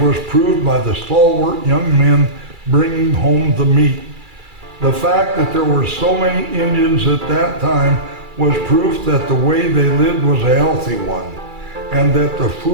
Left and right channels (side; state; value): left; late; 2.3 ms